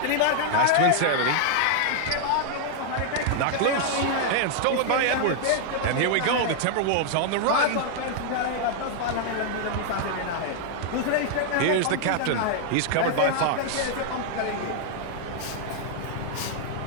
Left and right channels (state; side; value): different; both; correlation 0.00